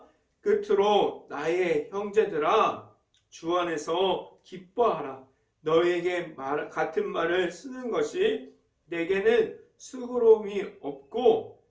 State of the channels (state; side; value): identical; both; correlation 1.00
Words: 끝으로 나의 형제들아 주 안에서 기뻐하라. 너희에게 같은 말을 쓰는 것이 내게는 수고로움이 없고